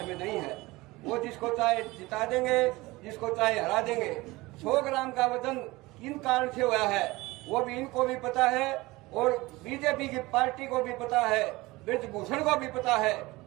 में नहीं है। वो जिसको चाहे जिता देंगे, जिसको चाहे हरा देंगे। 100 ग्राम का वजन किन कारण से हुआ है वो भी इनको भी पता है और बीजेपी की पार्टी को भी पता है, ब्रजभूषण को भी पता है।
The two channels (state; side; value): quieter; left; 21.0 dB